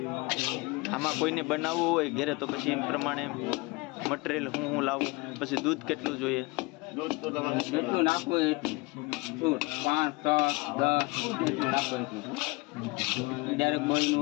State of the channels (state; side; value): quieter; right; 24.6 dB